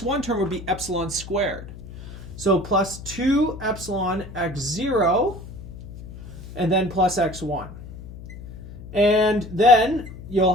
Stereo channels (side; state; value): left; noise; hum, 13 dB below the sound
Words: term would be epsilon squared. So plus 2 epsilon x0, and then plus x1. And then